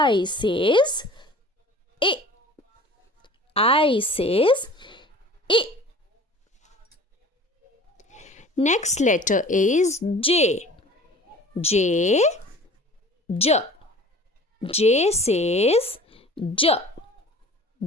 says Next letter is J. J says J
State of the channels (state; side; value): normal; both; correlation 0.44